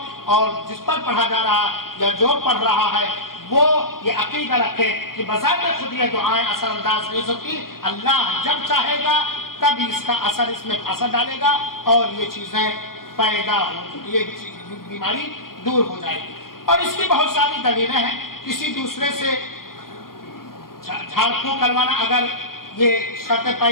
اور جس پر پڑھا جا رہا یا جو پڑھ رہا ہے وہ یہ عقیدہ رکھے کہ بذات خود یہ دعائیں اثر انداز نہیں ہوتی، اللہ جب چاہے گا تب اس کا اثر اس میں اثر ڈالے گا اور یہ چیزیں پیدا ہو، یہ بیماری دور ہو جائے گی۔ اور اس کی بہت ساری دلیلیں ہیں۔ کسی دوسرے سے جھاڑ پھونک کروانا اگر یہ شرطیں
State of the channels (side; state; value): right; late; 0.92 ms